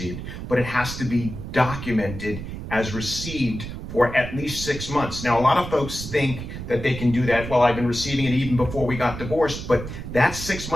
but it has to be documented as received for at least 6 months. Now, a lot of folks think that they can do that. Well, I've been receiving it even before we got divorced, but that 6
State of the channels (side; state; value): right; noise; rumble, 8 dB below the sound